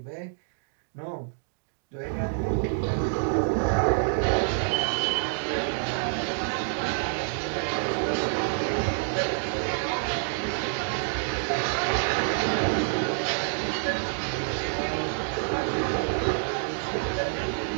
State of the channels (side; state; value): left; silent; 60 dB below the other